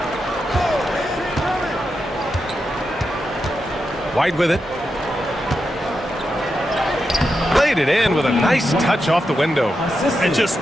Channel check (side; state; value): both; normal; correlation 0.87